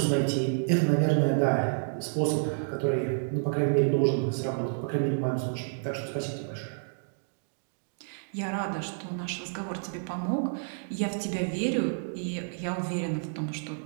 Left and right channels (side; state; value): left; silent; digital silence